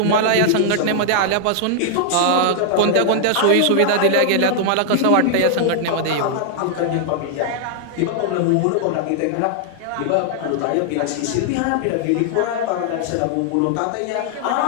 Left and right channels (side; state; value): both; different; correlation -0.01